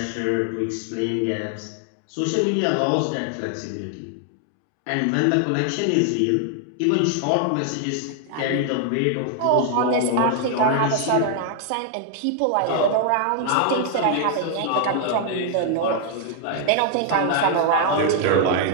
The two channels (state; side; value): different; both; correlation 0.00